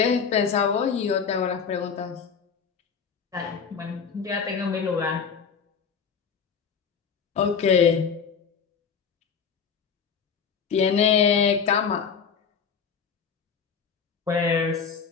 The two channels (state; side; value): quieter; right; 6.4 dB